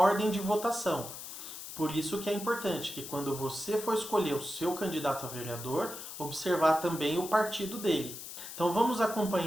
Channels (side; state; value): left; noise; hiss, 10 dB below the sound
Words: de votação. Por isso que é importante que quando você for escolher o seu candidato a vereador, observar também o partido dele. Então vamos